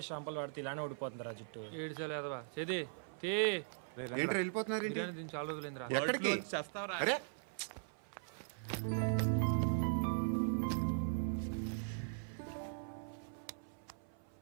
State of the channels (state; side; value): silent; left; 51 dB below the other